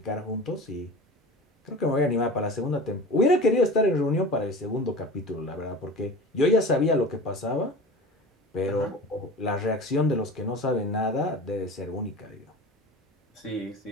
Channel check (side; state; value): both; normal; correlation 0.35